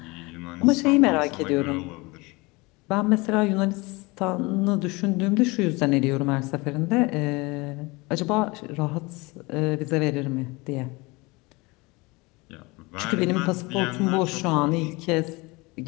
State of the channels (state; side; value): quieter; right; 24.7 dB